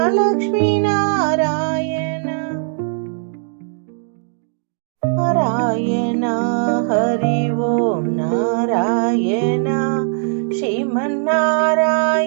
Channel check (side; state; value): left; silent; digital silence